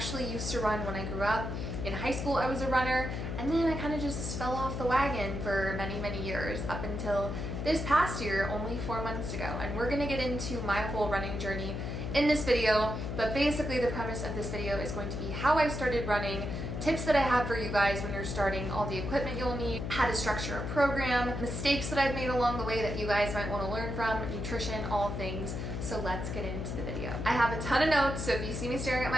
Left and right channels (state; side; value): noise; left; hum, 4 dB below the sound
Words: used to run when I grew up. In high school, I was a runner, and then I kind of just fell off the wagon for many years up until this past year, only 4 months ago. And we're gonna get into my whole running journey in this video, but basically the premise of this video is going to be how I started running, tips that I have for you guys when you're starting, all the equipment you'll need, how to structure a program, mistakes that I've made along the way that you guys might want to learn from, nutrition, all things. So let's get into the video. I have a ton of notes, so if you see me staring at